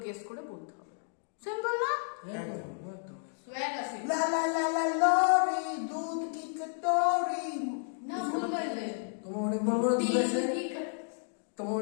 গেস করে বলতে হবে। সিম্পল না? একদম একদম সোয়াগ আছে লা লা লা লা লরি দুধ কি কটোরি। না, ভুল বললে তোমার অনেক বড় বড় দুধ আছে, তোমার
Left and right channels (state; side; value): silent; right; digital silence